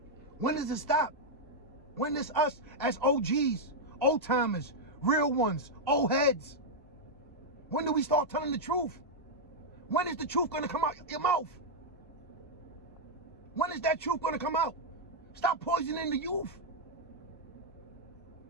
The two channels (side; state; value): both; normal; correlation -0.03